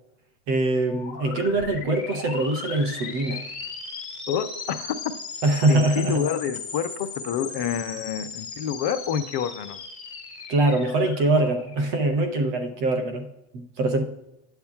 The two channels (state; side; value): late; left; 7.7 ms